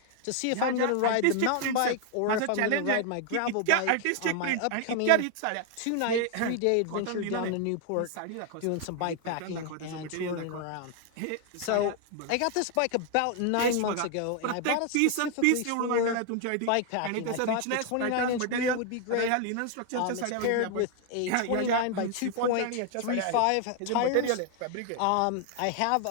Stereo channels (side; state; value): both; different; correlation 0.00